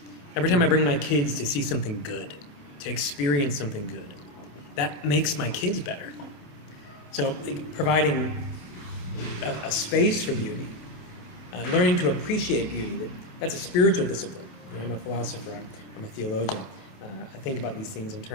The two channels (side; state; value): right; late; 28 ms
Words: Every time I bring my kids to see something good, to experience something good, that makes my kids better. So providing a space for beauty, learning to appreciate beauty, that's a spiritual discipline. I'm a philosopher, I'm a theologian. I think about these things in